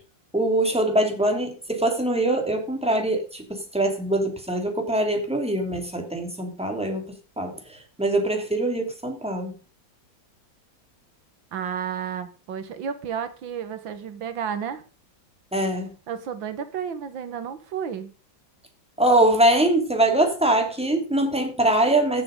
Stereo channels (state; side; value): normal; both; correlation 0.28